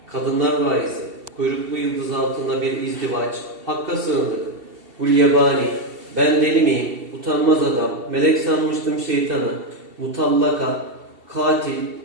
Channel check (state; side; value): late; left; 2.7 ms